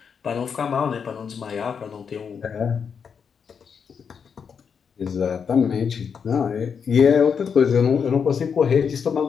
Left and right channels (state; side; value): quieter; right; 6.6 dB